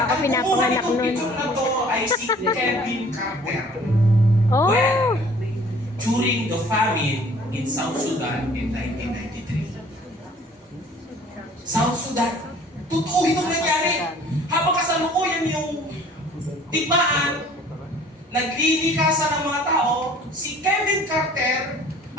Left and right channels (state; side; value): normal; both; correlation 0.52